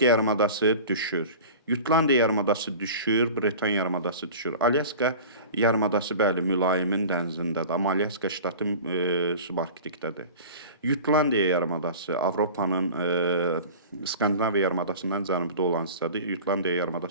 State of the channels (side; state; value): both; inverted; correlation -0.37